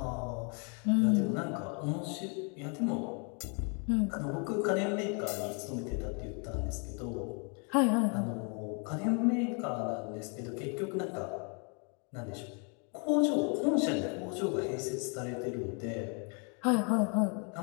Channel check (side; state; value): right; quieter; 37.5 dB